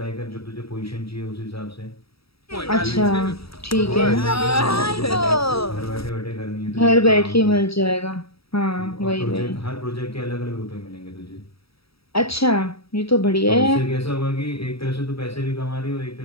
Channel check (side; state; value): right; late; 0.77 ms